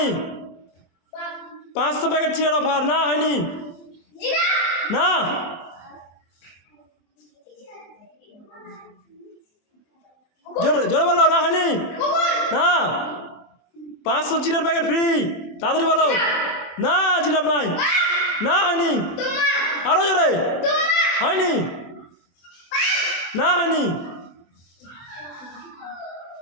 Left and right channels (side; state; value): right; late; 24 ms